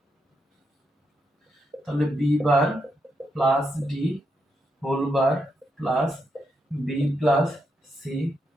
তাহলে B bar plus D whole bar plus B plus C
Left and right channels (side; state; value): both; normal; correlation 0.82